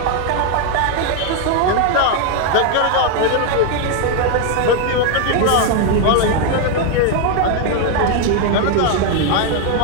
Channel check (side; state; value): both; different; correlation 0.01